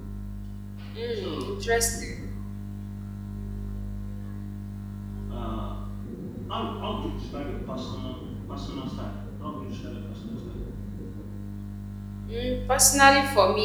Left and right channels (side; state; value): both; identical; correlation 1.00